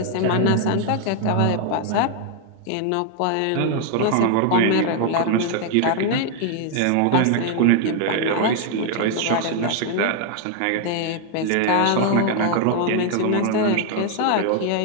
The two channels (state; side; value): different; both; correlation 0.00